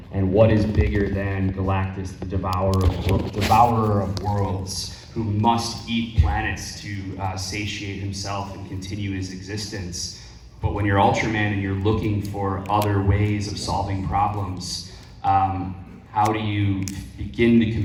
And what is bigger than Galactus, the devourer of worlds, who must eat planets to satiate himself and continue his existence? But when you're Ultraman and you're looking for other ways of solving problems, how do you begin to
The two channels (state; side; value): identical; both; correlation 1.00